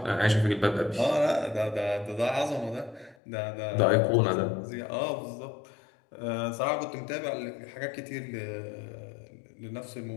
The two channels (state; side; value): drops out; right; at 3.2 s